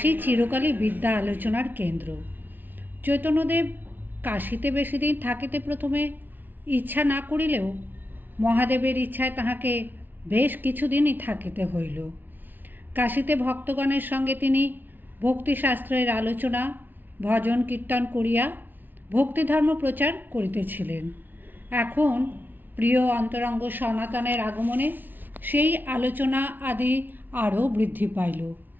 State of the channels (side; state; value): left; late; 0.089 ms